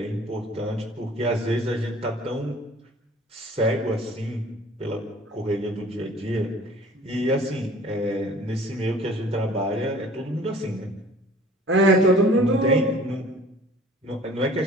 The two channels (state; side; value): normal; both; correlation 0.49